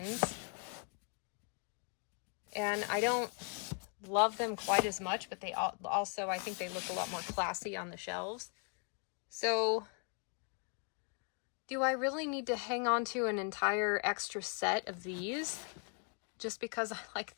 And I don't love them quite as much, but they also, I think they look a lot more classy on the shelves. So, do I really need to hang on to an entire extra set of these just because I like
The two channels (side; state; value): right; quieter; 37.6 dB